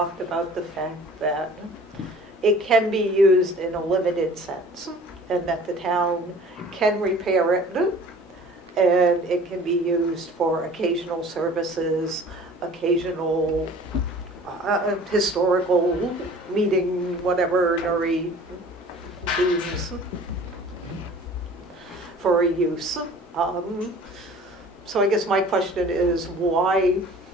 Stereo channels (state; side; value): normal; both; correlation 0.47